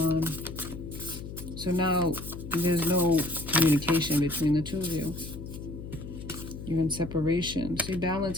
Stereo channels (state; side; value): noise; left; hum, 10 dB below the sound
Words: So now there's no communication between the two of you. You're in separation. See,